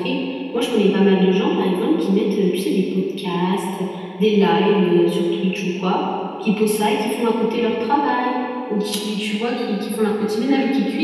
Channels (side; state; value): both; identical; correlation 1.00